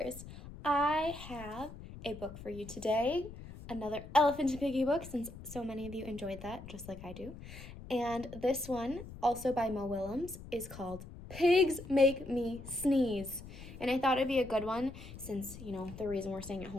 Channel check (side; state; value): left; noise; rumble, 14 dB below the sound